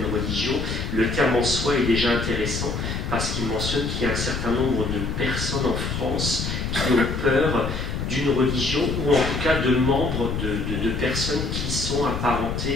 religions, le terme en soi est déjà intéressant parce qu'il mentionne qu'il y a un certain nombre de personnes en France qui ont peur d'une religion, ou en tout cas de membres de personnes qui sont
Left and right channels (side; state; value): left; noise; rumble, 3 dB below the sound